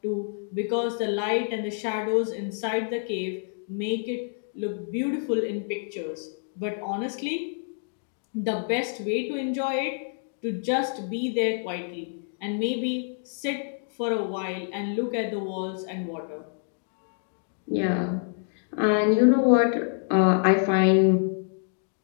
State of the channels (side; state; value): right; silent; 59 dB below the other